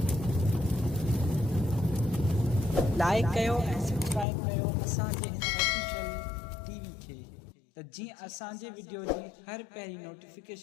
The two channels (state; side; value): drops out; right; at 4.2 s